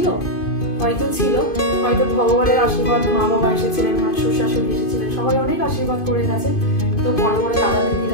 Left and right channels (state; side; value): late; right; 2.5 ms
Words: হয়তো ছিল, হয়তো ভগবানের আশীর্বাদ, মা বাবা এসেছিলেন, শ্বশুর শাশুড়ি এসেছিলেন, সবাই অনেক আশীর্বাদ করে গেছে। তো বড় বড় দাদা